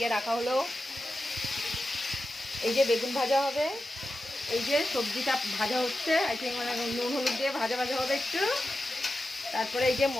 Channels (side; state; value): both; normal; correlation 0.92